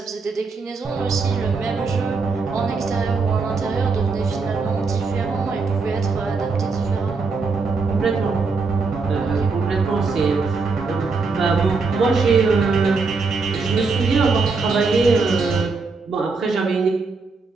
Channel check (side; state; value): left; quieter; 4.4 dB